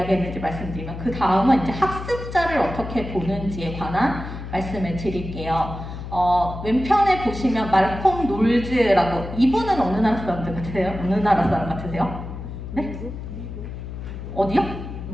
말씀드리면 그 다음은 이제 학습자를 어떻게 보는지에 관한 말씀을 드릴게요. 왼편에 보시면 말콤 놀즈라고, 이분은 어느 나라 사람 같으세요? 어느 나라 사람 같으세요? 네? 어디요?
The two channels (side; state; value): left; noise; hum, 9 dB below the sound